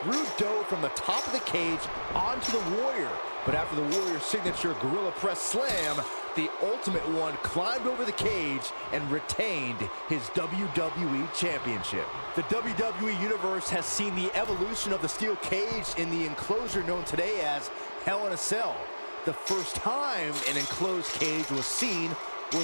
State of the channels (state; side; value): inverted; both; correlation -1.00